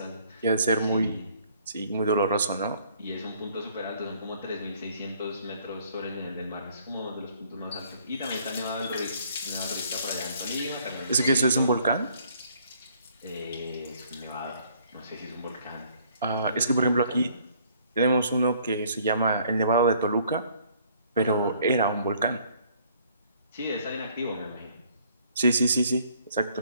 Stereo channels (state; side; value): inverted; both; correlation -0.62